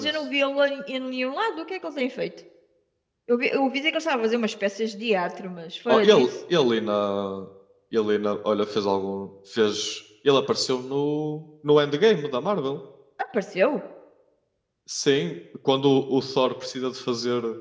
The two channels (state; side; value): identical; both; correlation 1.00